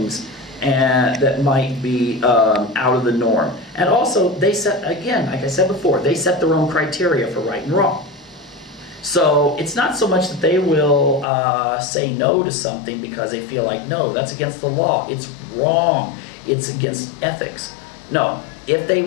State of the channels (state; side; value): drops out; right; at 11.2 s